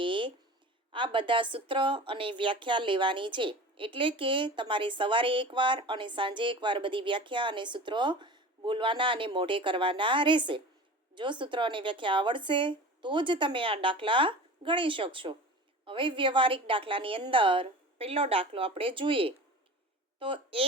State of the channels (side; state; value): both; normal; correlation 0.36